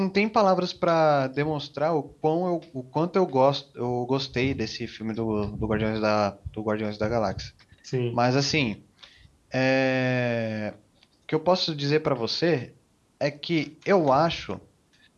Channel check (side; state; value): both; identical; correlation 1.00